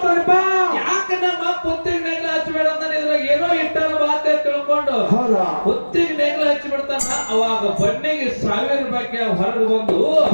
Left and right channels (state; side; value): inverted; both; correlation -1.00